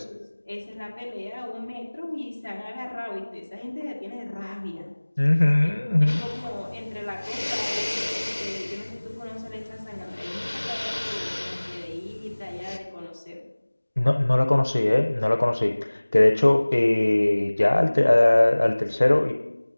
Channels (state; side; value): inverted; both; correlation -1.00